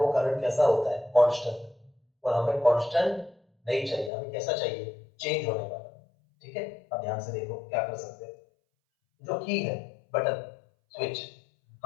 वो करंट कैसा होता है, कांस्टेंट। और हमें कांस्टेंट नहीं चाहिए, हमें कैसा चाहिए, चेंज होने वाला। ठीक है, अब ध्यान से देखो क्या कर सकते हैं। जो की है, बटन, स्विच,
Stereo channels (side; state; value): right; drops out; at 4.1 s